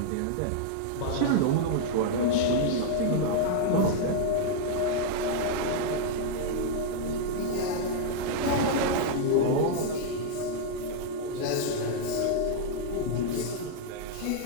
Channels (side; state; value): both; different; correlation -0.01